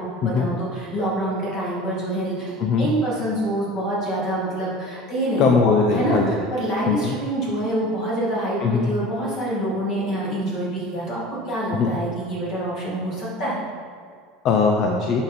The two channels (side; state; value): both; normal; correlation 0.40